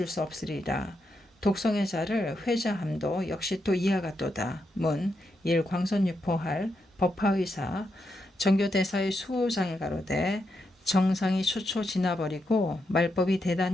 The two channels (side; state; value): both; normal; correlation 0.83